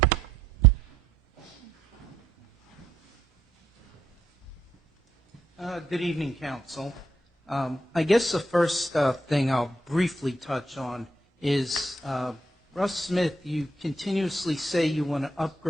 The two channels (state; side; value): normal; both; correlation 0.75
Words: Good evening, Council. I guess the first thing I'll briefly touch on is, Russ Smith, you continuously say you want to